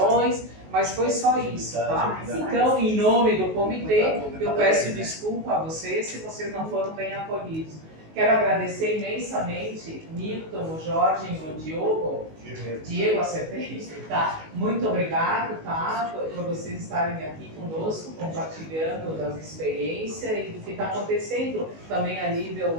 mas foi só isso, tá? Então, em nome do comitê, eu peço desculpa a vocês se vocês não foram bem acolhidos. Quero agradecer imensamente Milton, o Jorge e o Diego, acertei, tá? Muito obrigado, tá? Por vocês estarem aqui conosco, compartilhando das experiências e do que está acontecendo também a nível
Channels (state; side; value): late; left; 19 ms